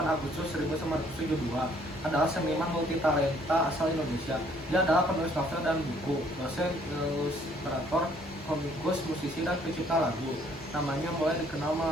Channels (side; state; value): both; normal; correlation 0.62